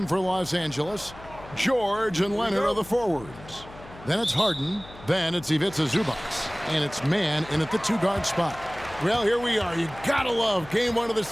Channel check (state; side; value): noise; left; hum, 18 dB below the sound